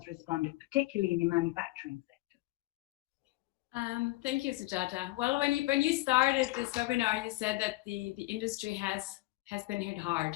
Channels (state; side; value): quieter; right; 20.5 dB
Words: responded, particularly in the manufacturing sector. Thank you, Sujata. Well, when you started this webinar, you said that the industry has been hit